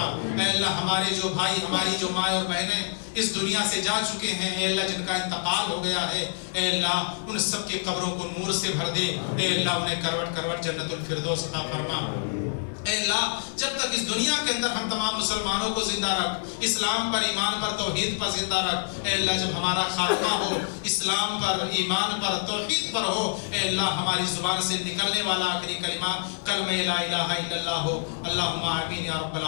اے اللہ ہمارے جو بھائی، ہماری جو ماں اور بہنیں اس دنیا سے جا چکے ہیں، اے اللہ جن کا انتقال ہو گیا ہے، اے اللہ ان سب کے قبروں کو نور سے بھر دے۔ اے اللہ انہیں کروٹ کروٹ جنت الفردوس عطا فرما۔ اے اللہ جب تک اس دنیا کے اندر ہم تمام مسلمانوں کو زندہ رکھ، اسلام پر، ایمان پر، توحید پر زندہ رکھ۔ اے اللہ جب ہمارا خاتمہ ہو اسلام پر، ایمان پر، توحید پر ہو، اے اللہ ہماری زبان سے نکلنے والا آخری کلمہ کلمہ لا الہ الا اللہ ہو۔ اللہم آمین یا رب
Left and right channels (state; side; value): silent; right; digital silence